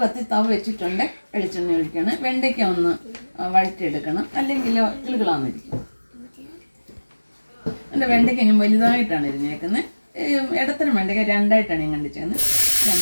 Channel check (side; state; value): both; inverted; correlation -1.00